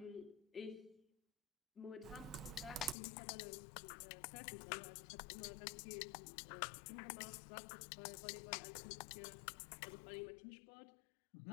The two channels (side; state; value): right; drops out; at 3.0 s